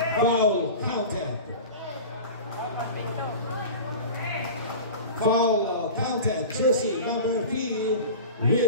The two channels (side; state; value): both; inverted; correlation -0.33